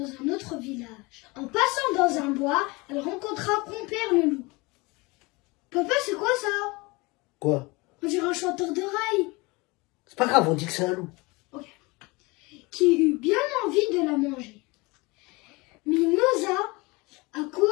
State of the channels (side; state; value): right; quieter; 24.9 dB